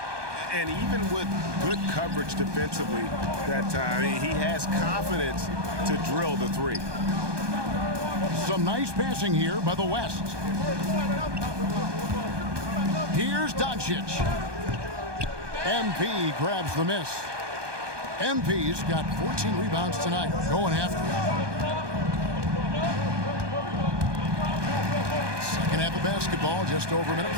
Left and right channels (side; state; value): left; late; 1.2 ms